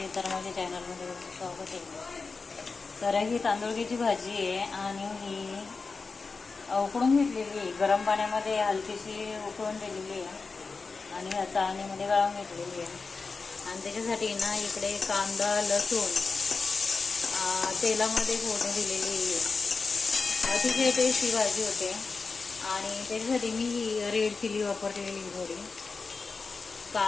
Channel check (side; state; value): right; quieter; 4.4 dB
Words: तर माझ्या चॅनलमध्ये स्वागत आहे. तर ही तांदूळक्याची भाजी आहे आणि ही उकडून घेतलेली आहे. गरम पाण्यामध्ये हलकीशी उकळून दिलेली आहे आणि ह्या चाळणीमध्ये गाळून घेतलेली आहे. आणि त्याच्यासाठी ना इकडे कांदा लसूण तेलामध्ये फोडणी दिलेली आहे. अतिशय टेस्टी भाजी होते. आणि त्याच्यासाठी मी ही रेड चिली वापरलेली थोडी.